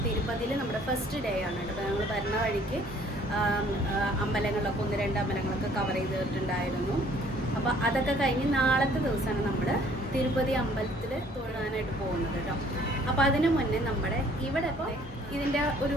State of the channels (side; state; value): both; normal; correlation 0.58